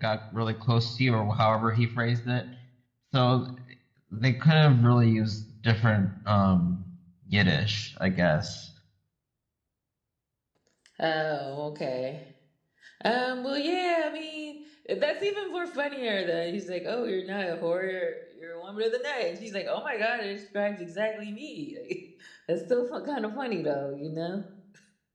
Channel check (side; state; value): both; identical; correlation 1.00